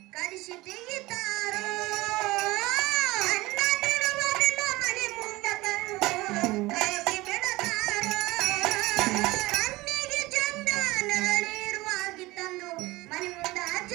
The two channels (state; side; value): quieter; left; 20.2 dB